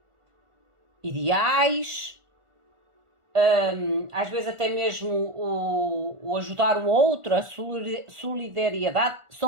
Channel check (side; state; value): left; late; 1.4 ms